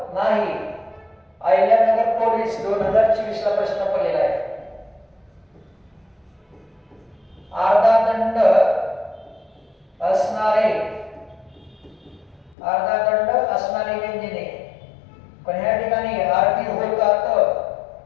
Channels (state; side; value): drops out; right; at 12.6 s